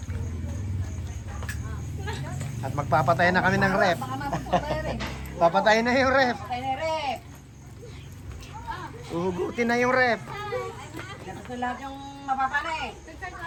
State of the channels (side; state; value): both; identical; correlation 1.00